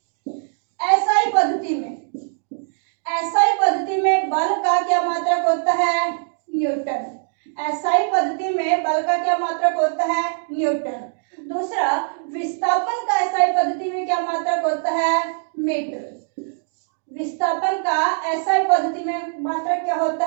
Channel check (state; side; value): silent; left; digital silence